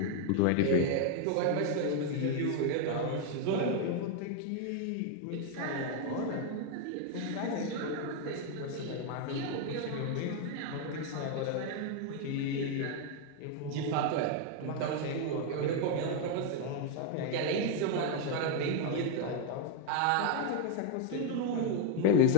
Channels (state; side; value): different; both; correlation 0.00